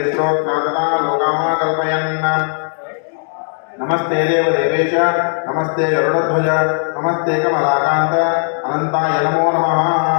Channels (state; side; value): silent; right; digital silence